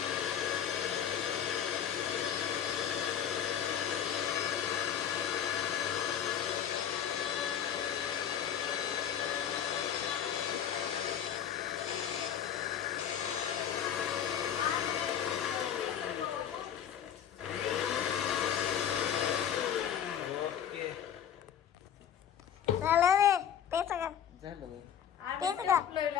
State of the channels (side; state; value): right; quieter; 9.2 dB